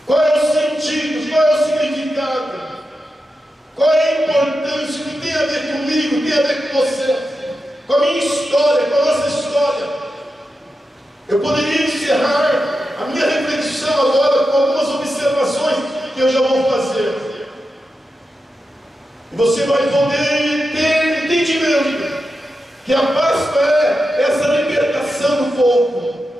Qual é o sentido? Qual é o significado? Qual é a importância? O que tem a ver comigo? Tem a ver com você? Com a minha história, com a nossa história? Eu poderia encerrar a minha reflexão agora com algumas observações que eu já vou fazer. E você vai poder ter entendimento que a Páscoa é essa libertação do povo.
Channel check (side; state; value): both; normal; correlation 0.90